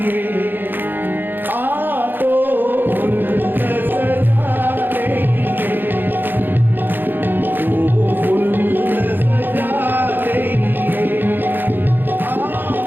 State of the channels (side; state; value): left; late; 0.093 ms